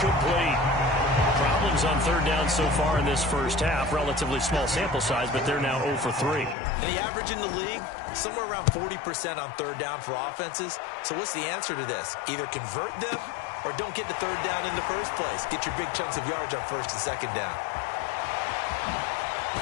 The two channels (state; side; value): drops out; right; at 6.6 s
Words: Problems on 3rd down so far in this first half. Relatively small sample size, but they're now 0 for 3. And the average in the league, somewhere around 40% on 3rd down for offenses. So what's the answer to this? Either convert them or don't get to 3rd down in the first place. Get your big chunks of yards on 1st and 2nd down.